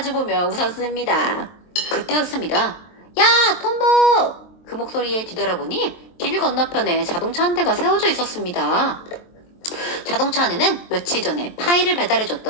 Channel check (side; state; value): right; late; 23 ms